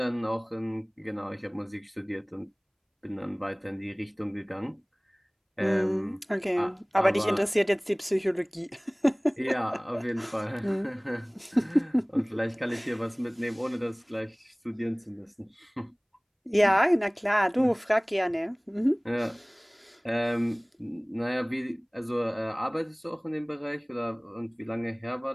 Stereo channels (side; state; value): both; identical; correlation 1.00